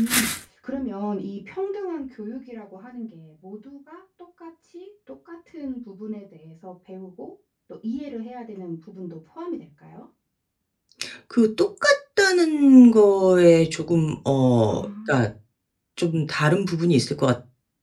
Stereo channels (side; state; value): both; identical; correlation 1.00